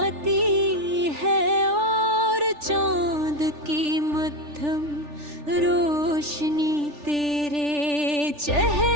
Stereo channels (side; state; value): left; late; 3.4 ms